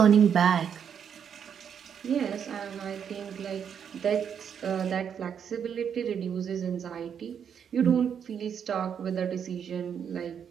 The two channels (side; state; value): left; quieter; 7.9 dB